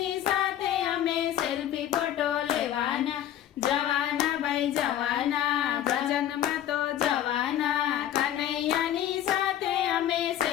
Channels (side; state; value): right; quieter; 11.4 dB